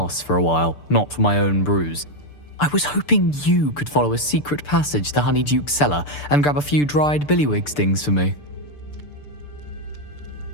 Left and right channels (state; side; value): late; right; 6.8 ms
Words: for a while, not for my own brews. I was hoping you could follow a secret passage to Honeyduke's cellar and grab a few dried billywig stings for me.